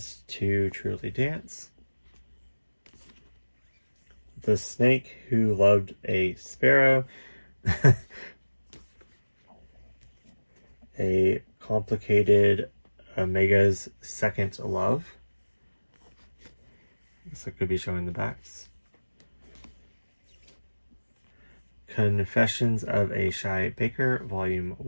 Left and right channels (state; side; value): inverted; both; correlation -1.00